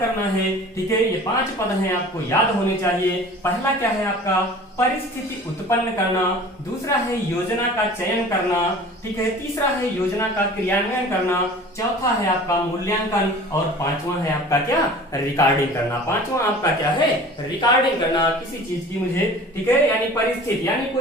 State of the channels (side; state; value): both; normal; correlation 0.43